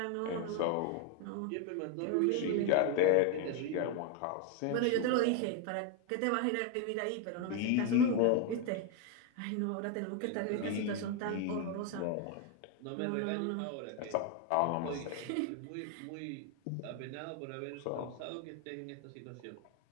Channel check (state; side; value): different; both; correlation 0.01